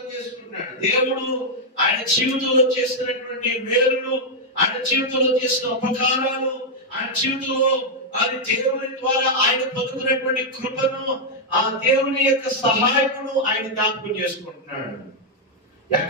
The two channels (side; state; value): both; normal; correlation -0.02